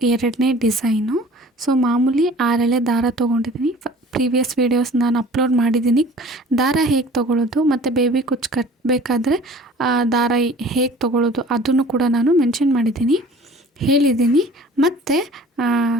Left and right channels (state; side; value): normal; both; correlation 0.46